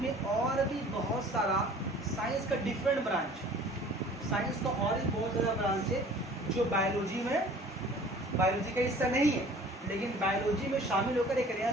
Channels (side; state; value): both; normal; correlation 0.48